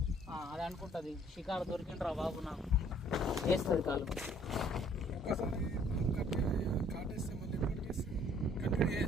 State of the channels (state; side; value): normal; both; correlation 0.60